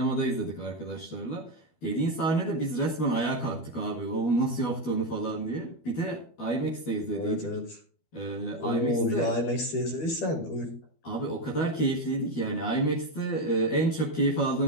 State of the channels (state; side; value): late; right; 12 ms